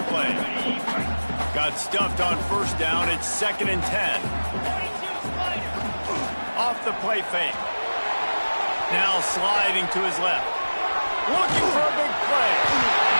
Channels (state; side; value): inverted; both; correlation -1.00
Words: play. Got stuffed on first down. It's 2nd and 10. Off the play fake. Now sliding to his left. Looking for a big play.